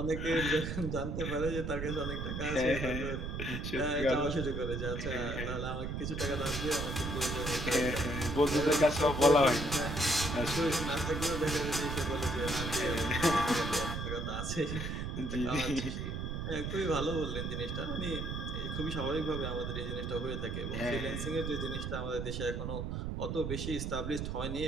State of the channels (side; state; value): right; noise; rumble, 3 dB below the sound